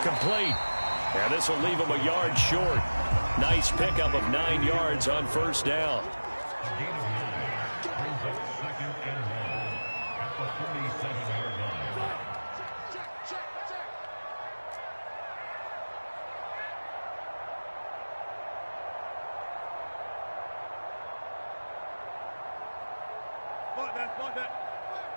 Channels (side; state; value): both; inverted; correlation -1.00